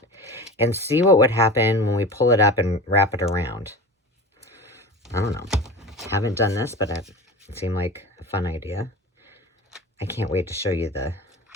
and see what would happen when we pull it up and wrap it around. I don't know. Haven't done this, but it seemed like a fun idea. I can't wait to show you the...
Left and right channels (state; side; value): normal; both; correlation 0.32